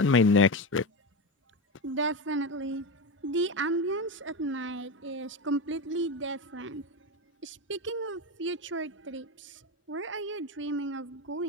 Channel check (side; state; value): both; normal; correlation 0.18